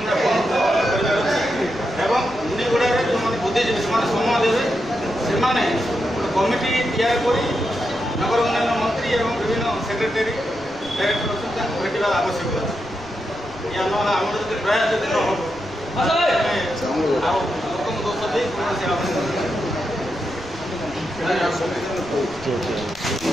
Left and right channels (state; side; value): noise; left; rumble, 21 dB below the sound